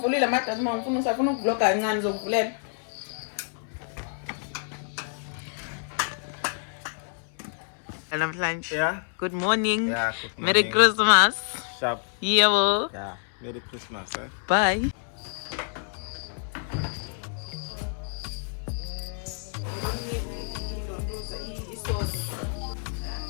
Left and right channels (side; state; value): right; silent; 60 dB below the other